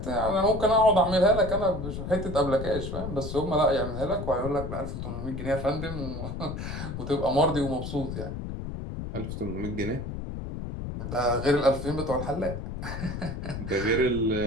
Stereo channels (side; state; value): left; noise; rumble, 6 dB below the sound